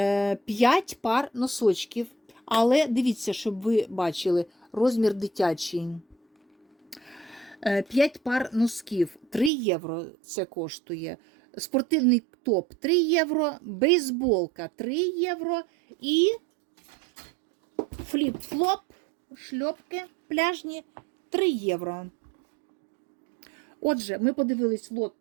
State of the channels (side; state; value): left; drops out; at 9.5 s